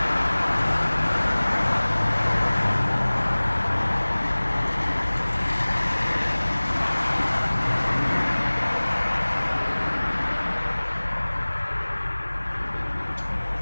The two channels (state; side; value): inverted; both; correlation -1.00